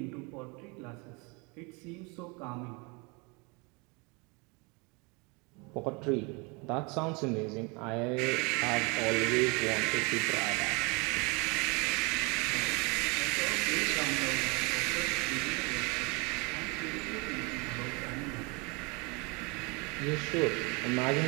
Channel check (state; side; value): quieter; left; 28.6 dB